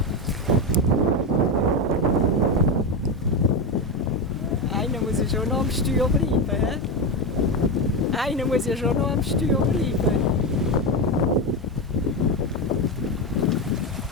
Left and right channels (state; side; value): normal; both; correlation 0.13